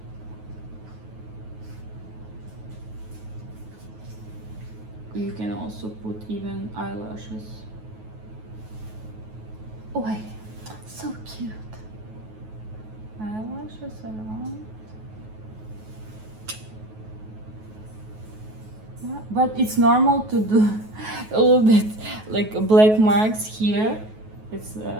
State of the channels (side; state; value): left; late; 9.3 ms